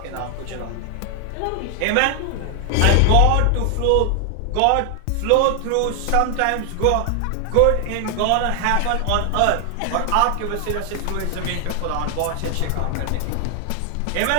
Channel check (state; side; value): different; both; correlation 0.00